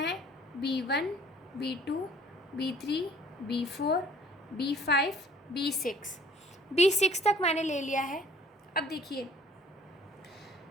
b1 b2 b3 b4 b5 b6 तक मैंने ले लिया है। अब देखिए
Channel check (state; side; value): normal; both; correlation 0.55